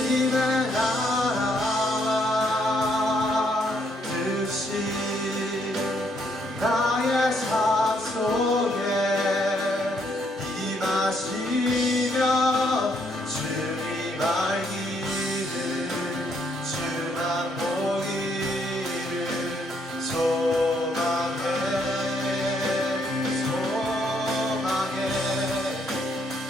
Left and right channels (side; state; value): both; normal; correlation 0.71